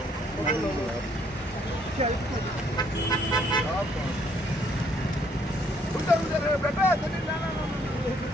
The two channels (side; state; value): both; normal; correlation 0.67